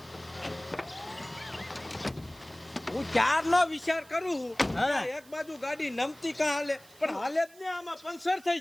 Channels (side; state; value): right; noise; hiss, 24 dB below the sound